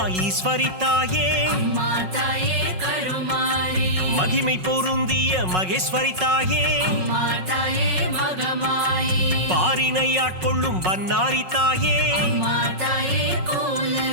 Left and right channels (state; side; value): late; left; 5.4 ms